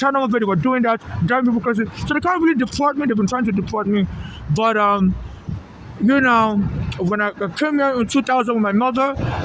Bay they were doing that, driving people crazy. So they can't really deport me. They've been trying to deport me. But, when I came here in 2000 with my mother,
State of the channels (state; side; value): identical; both; correlation 1.00